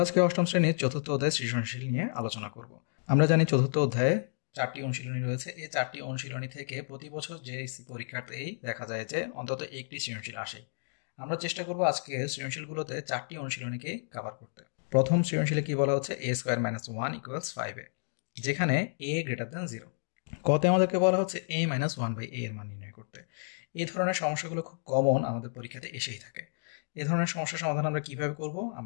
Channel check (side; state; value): right; silent; digital silence